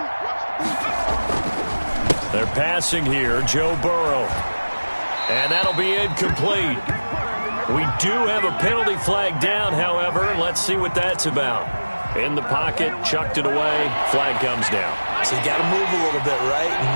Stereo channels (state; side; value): inverted; both; correlation -1.00